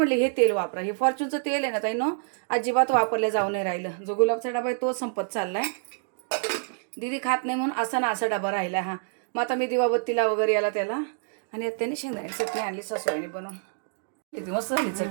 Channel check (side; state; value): left; silent; digital silence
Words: हे तेल वापरा. हे फॉर्च्यूनचं तेल आहे ना ताई, अजिबात वापरल्या जाऊ नाही राहिलं. जो गुलाबचा डबा आहे तो संपत चाललाय. दीदी खात नाही म्हणून असा ना असा डबा राहिला हा. मग आता मी दिवाबत्तीला वगैरे याला त्याला. आणि आता त्यांनी शेंगदाण्याची चटणी आणली सासूबाईंनी बनवून. किती मस्त झाली